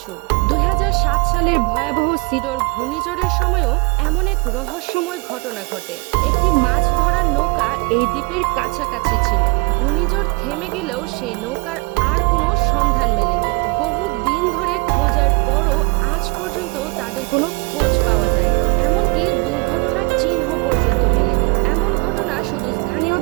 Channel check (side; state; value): left; quieter; 29.6 dB